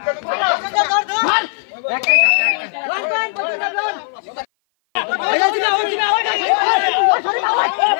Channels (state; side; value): silent; right; 57 dB below the other